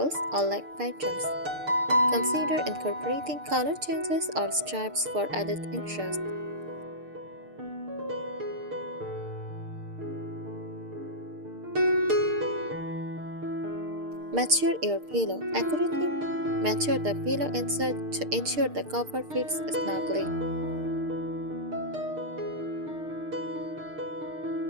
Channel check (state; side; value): late; left; 6.6 ms